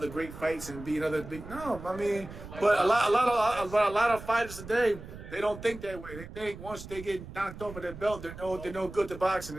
great fights and be another big. No, I mean, but a lot of fighters today, they don't think that way. They think once they get knocked off of their belt, they're no good to boxing,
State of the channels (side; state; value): right; noise; rumble, 13 dB below the sound